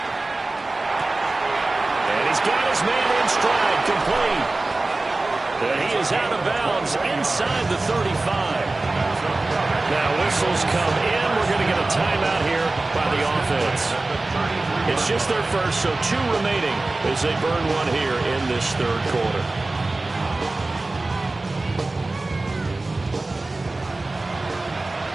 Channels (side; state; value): left; quieter; 3.1 dB